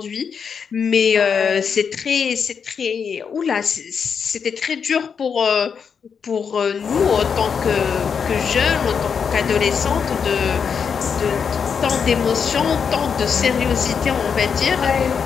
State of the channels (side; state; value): right; quieter; 6.5 dB